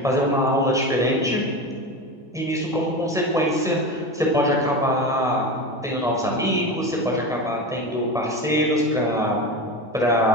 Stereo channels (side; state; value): both; normal; correlation 0.24